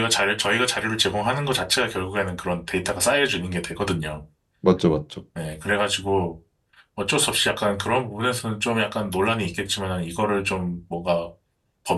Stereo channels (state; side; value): identical; both; correlation 1.00